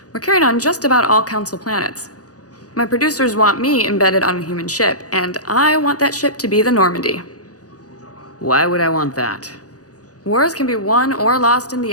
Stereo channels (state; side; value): late; right; 0.67 ms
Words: We're carried on just about all Council planets. My producers want me embedded on a human ship, and I want that ship to be the Normandy. Why would I want that? Wars can be won or lost in